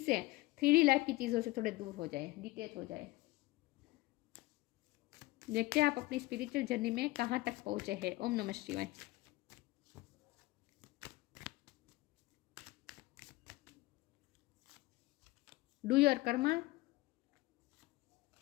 3D लाइफ की चीज़ों से थोड़े दूर हो जाए, डिटैच हो जाए। देखते हैं आप अपनी स्पिरिचुअल जर्नी में कहाँ तक पहुँचे हैं। ओम नमः शिवाय। Do your Karma,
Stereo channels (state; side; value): quieter; right; 19.7 dB